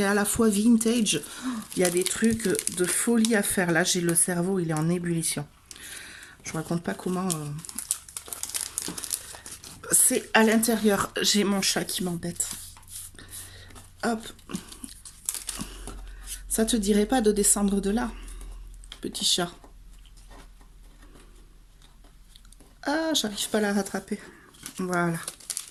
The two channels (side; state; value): both; identical; correlation 1.00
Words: à la fois vintage. Il y a des trucs de folie à faire. Là, j'ai le cerveau, il est en ébullition. Je vous raconte pas comment... C'est à l'intérieur. J'ai mon chat qui m'embête. Hop. Ça te dirait pas de descendre de là, petit chat? Ah, j'arrive pas à la rattraper. Voilà.